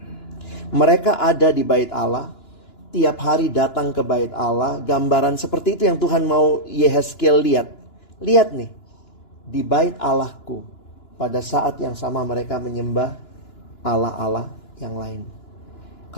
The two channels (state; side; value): late; right; 2.9 ms